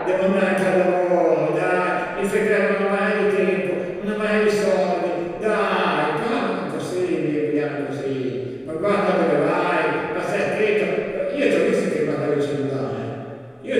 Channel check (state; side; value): identical; both; correlation 1.00